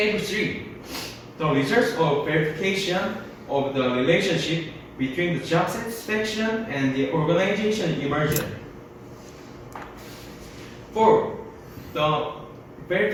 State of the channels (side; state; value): both; identical; correlation 1.00